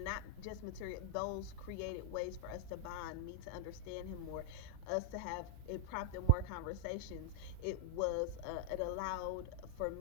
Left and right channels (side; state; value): both; different; correlation -0.01